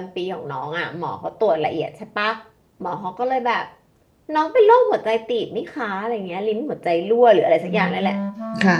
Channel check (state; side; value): identical; both; correlation 1.00